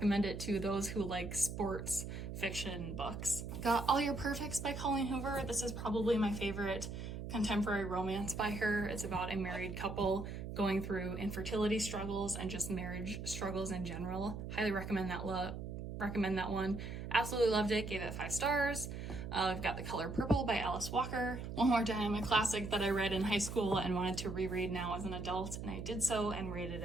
it to those who like sports fiction books. Got All Your Perfects by Colleen Hoover. This is probably my favorite contemporary romance by her. It's about a married couple going through infertility struggles and just marriage struggles in general. Highly recommend that one. Absolutely loved it. Gave it 5 stars. I've got The Color Purple by Alice Walker. One More Time, a classic that I read in high school and wanted to reread now as an adult, and I did so and rated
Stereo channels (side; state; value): right; noise; hum, 7 dB below the sound